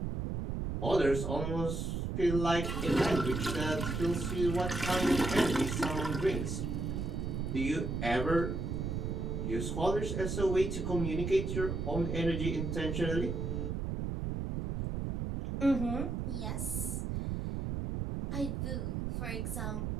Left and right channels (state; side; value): noise; right; rumble, 2 dB below the sound